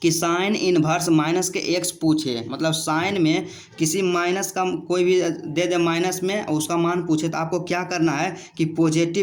कि साइन इनवर्स माइनस के एक्स पूछे, मतलब साइन में किसी माइनस का कोई भी दे दे माइनस में उसका मान पूछे, तो आपको क्या करना है कि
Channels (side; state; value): both; identical; correlation 1.00